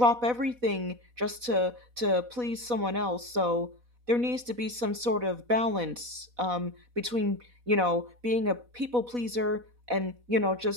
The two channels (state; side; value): late; left; 4.1 ms